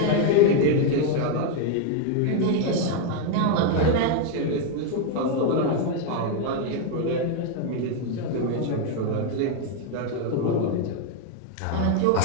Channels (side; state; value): both; different; correlation 0.01